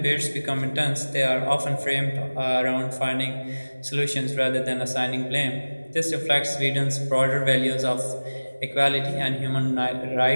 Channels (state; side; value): inverted; both; correlation -1.00